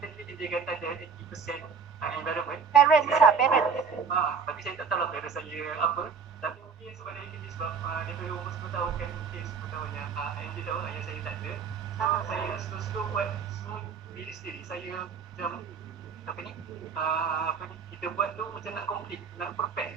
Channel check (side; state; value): left; quieter; 6.0 dB